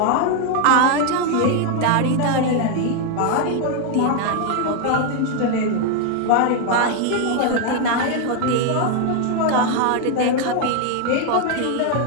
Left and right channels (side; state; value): both; different; correlation 0.00